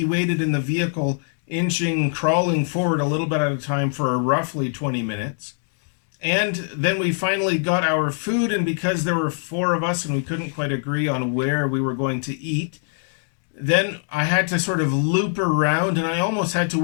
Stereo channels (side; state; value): right; silent; digital silence